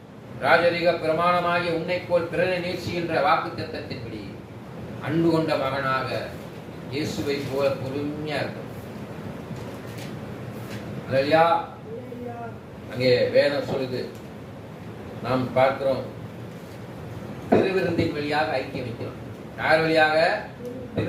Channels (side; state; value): both; identical; correlation 1.00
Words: ராஜரிக பிரமாணமாகிய உன்னை போல் பிறனை நேசிக்கின்ற வாக்குத்தத்தத்தின்படி அன்பு கொண்ட மகனாக இயேசுவை போல பொறுமையா இருக்கும். அல்லேலூயா. அங்கே வேதம் சொல்லுது, நாம் பார்க்கிறோம், திருவிருந்தின் வழியாக ஐக்கியம் வைக்கிறோம். யார் வழியாக?